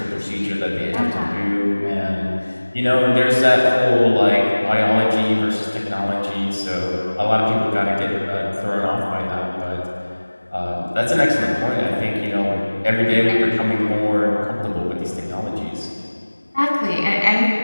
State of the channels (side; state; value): both; inverted; correlation -1.00